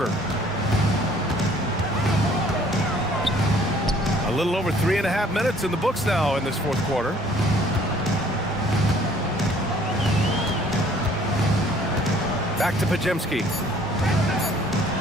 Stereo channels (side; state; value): both; normal; correlation 0.57